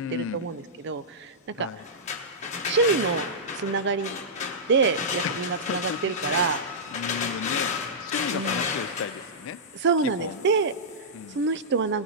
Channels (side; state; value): both; normal; correlation -0.13